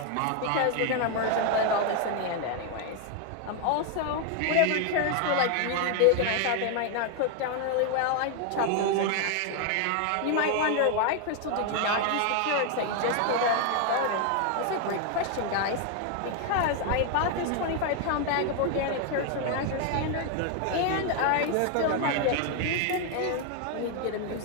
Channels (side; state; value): both; different; correlation 0.00